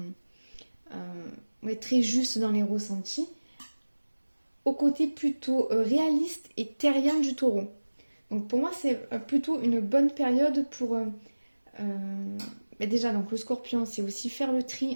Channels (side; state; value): both; inverted; correlation -1.00